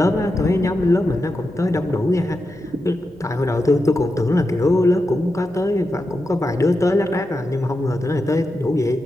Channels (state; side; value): normal; both; correlation 0.88